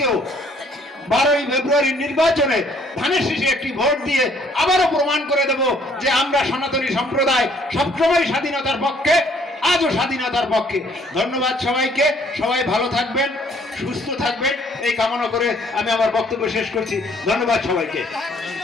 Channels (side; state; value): both; normal; correlation 0.62